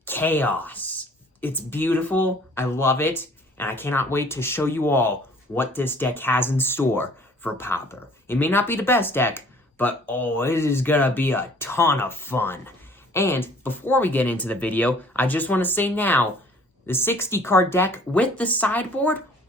chaos. It's beautiful. I love it. And I cannot wait to show you all what this deck has in store for Pauper. It may not be the best deck, but oh, it is gonna be a ton of fun. And before we get into the video, I just want to say now, the 60 card deck with the sideboard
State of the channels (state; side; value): normal; both; correlation 0.54